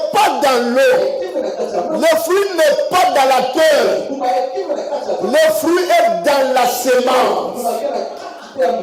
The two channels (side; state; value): both; identical; correlation 1.00